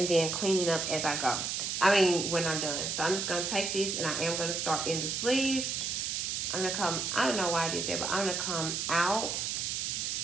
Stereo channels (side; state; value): right; noise; hiss, 1 dB below the sound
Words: then cleaning up as I go. I mean, when I'm done. So I'm just going to take this and I am going to start in the sleeve. I'm going to come, I don't know why I did that, but I'm going to come out.